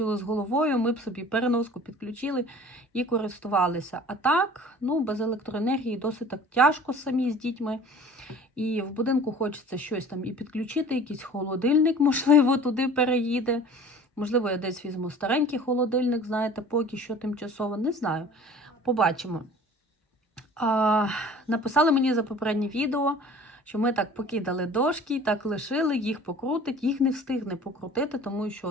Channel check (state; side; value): normal; both; correlation 0.45